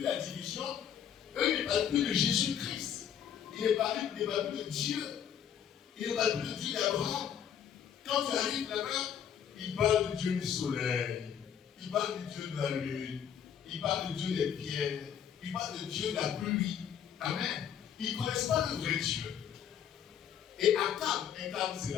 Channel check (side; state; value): right; quieter; 8.9 dB